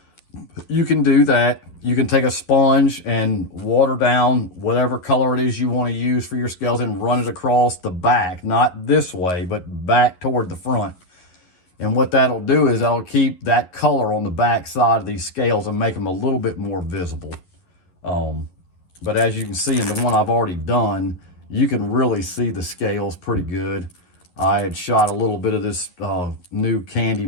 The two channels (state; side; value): late; right; 11 ms